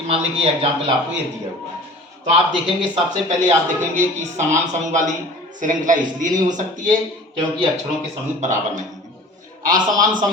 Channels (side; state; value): both; normal; correlation 0.43